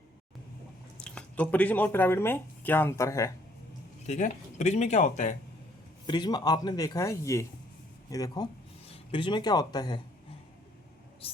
तो प्रिज्म और पिरामिड में क्या अंतर है? ठीक है। प्रिज्म में क्या होता है? प्रिज्म आपने देखा है, ये देखो, प्रिज्म में क्या होता है?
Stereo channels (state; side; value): normal; both; correlation 0.64